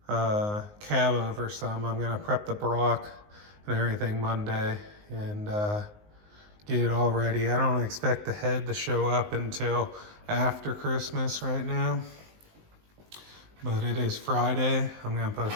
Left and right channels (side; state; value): left; late; 19 ms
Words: cab over some. I'm gonna prep the block and everything Monday and get it all ready. I don't expect the head to show up until after Christmas right now, but it is Friday. I'm gonna post